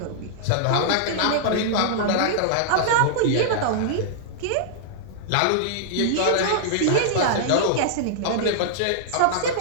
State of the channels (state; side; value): different; both; correlation -0.01